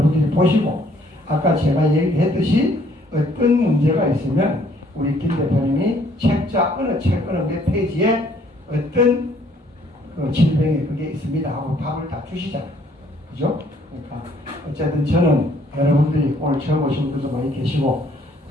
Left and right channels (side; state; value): both; normal; correlation 0.63